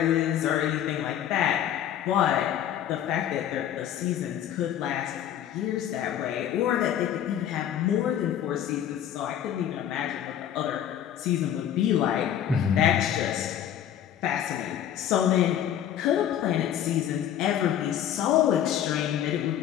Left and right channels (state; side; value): quieter; right; 10.4 dB